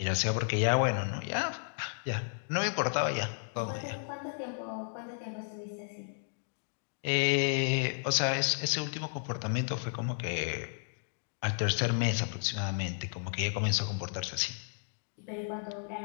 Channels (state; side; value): silent; right; digital silence